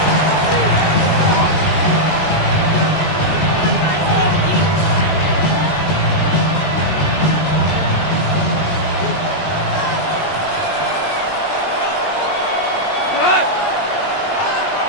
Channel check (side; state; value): right; late; 19 ms